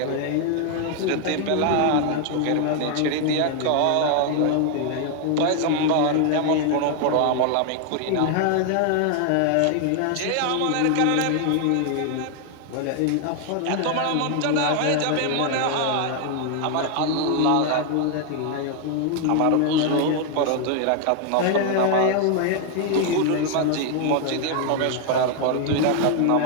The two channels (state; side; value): different; both; correlation 0.00